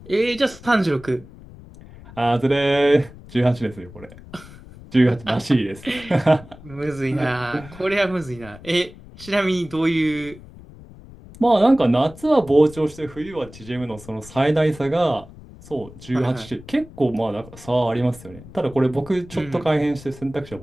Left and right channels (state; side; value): noise; left; rumble, 19 dB below the sound